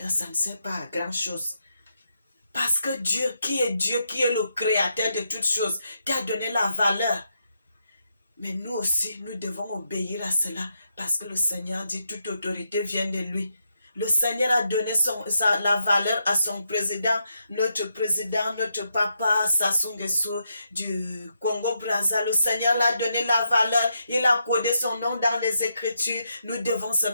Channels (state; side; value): inverted; both; correlation -0.82